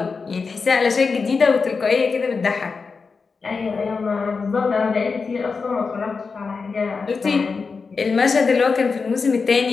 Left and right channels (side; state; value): right; quieter; 4.8 dB